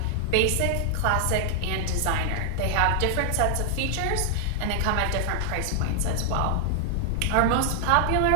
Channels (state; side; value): different; both; correlation 0.00